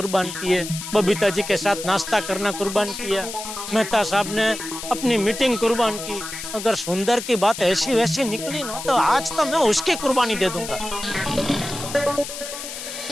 किए, बबीता जी के साथ नाश्ता करना कुर्बान किया, मेहता साहब ने अपनी मीटिंग कुर्बान की। अगर सुंदर की बात ऐसी वैसी निकली ना तो आज तो मैं उसकी कुर्बानी दे दूंगा।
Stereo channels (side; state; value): left; noise; hiss, 9 dB below the sound